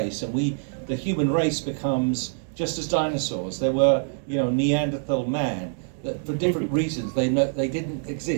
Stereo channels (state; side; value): silent; left; digital silence